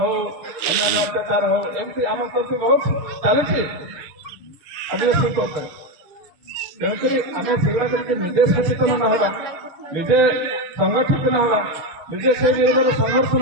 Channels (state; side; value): late; left; 6.6 ms